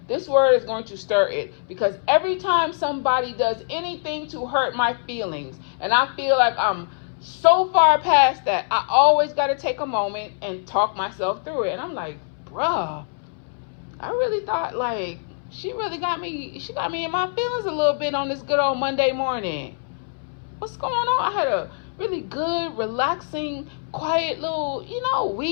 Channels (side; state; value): right; silent; 63 dB below the other